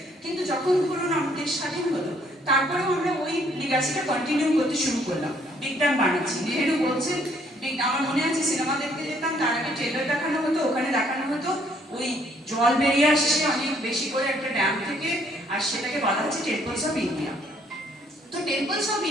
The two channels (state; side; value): normal; both; correlation 0.65